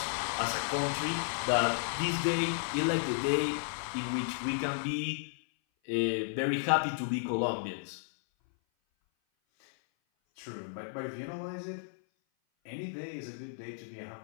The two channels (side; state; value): right; silent; 56 dB below the other